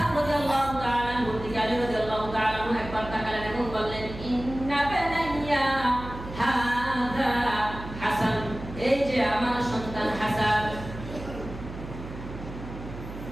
রাদিয়াল্লাহু তাআলা আনহু থেকে আলী রাদিয়াল্লাহু তাআলা আনহু একবার তাকালেন এবং বললেন, ইন্না বানাইয়া হাযা হাসান, এই যে আমার সন্তান হাসান।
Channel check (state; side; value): noise; right; hum, 11 dB below the sound